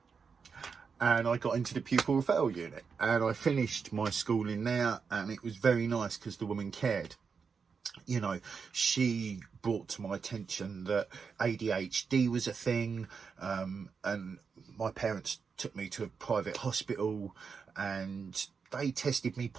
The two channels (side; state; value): left; quieter; 5.7 dB